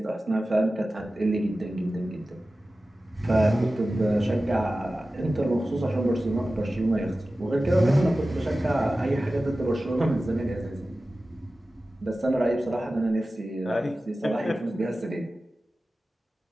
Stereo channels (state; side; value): normal; both; correlation 0.95